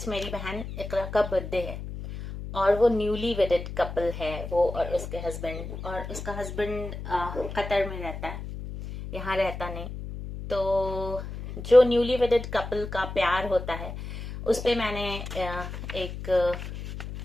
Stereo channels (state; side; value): noise; left; hum, 8 dB below the sound